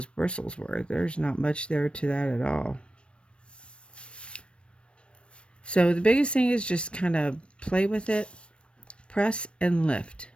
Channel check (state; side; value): late; right; 0.059 ms